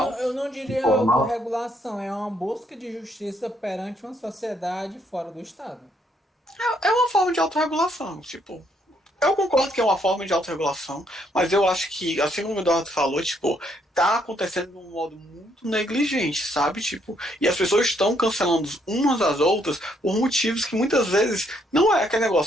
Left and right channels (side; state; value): both; normal; correlation 0.71